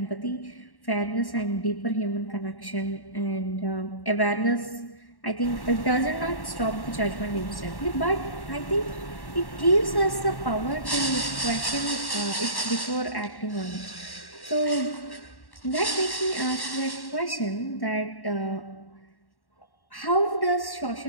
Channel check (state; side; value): late; right; 1.1 ms